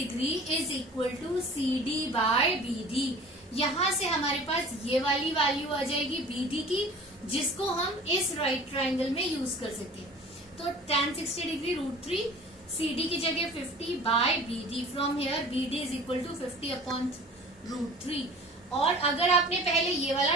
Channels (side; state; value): both; normal; correlation 0.43